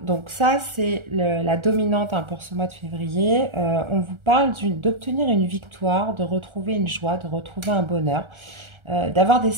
donc ça c'est la dominante hein, pour ce mois de février. On vous parle d'obtenir une victoire, de retrouver une joie, de retrouver un bonheur, d'avoir des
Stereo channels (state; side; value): late; left; 1.4 ms